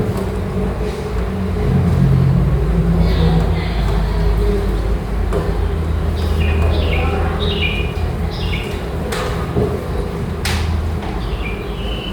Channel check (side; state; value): both; identical; correlation 1.00